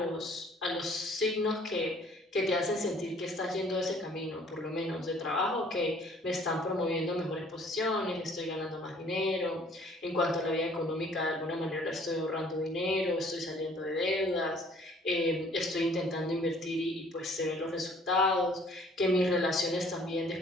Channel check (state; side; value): normal; both; correlation 0.57